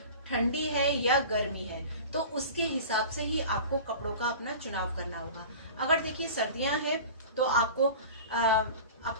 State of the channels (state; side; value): inverted; both; correlation -0.37